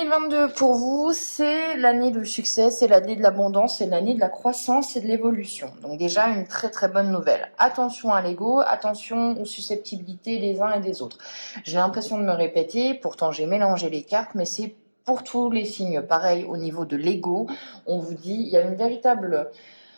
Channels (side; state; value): both; inverted; correlation -1.00